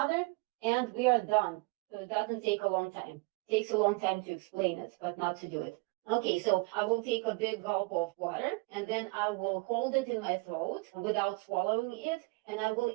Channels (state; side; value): quieter; left; 26.9 dB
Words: and we are done. So it doesn't take a long time. It takes a long time to explain it, but not to do it. Okay, so I will take a big gulp of water and then I will hold it in my throat without swallowing it, and I will